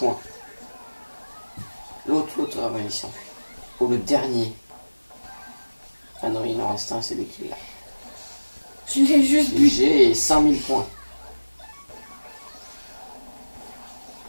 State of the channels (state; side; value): inverted; both; correlation -1.00